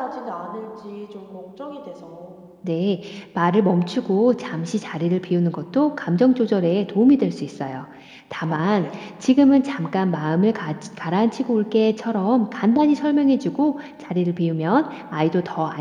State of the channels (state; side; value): identical; both; correlation 1.00